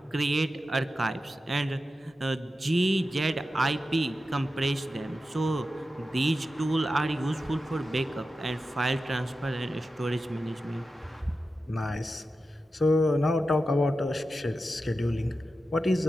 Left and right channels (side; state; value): both; normal; correlation 0.91